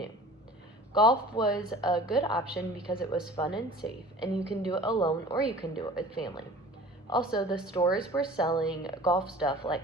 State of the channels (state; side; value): normal; both; correlation 0.44